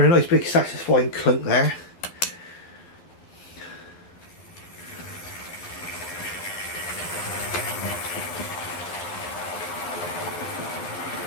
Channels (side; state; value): right; late; 12 ms